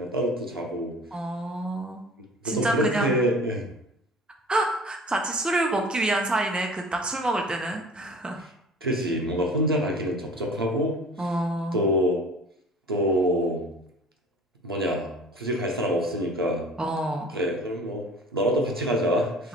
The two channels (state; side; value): normal; both; correlation 0.44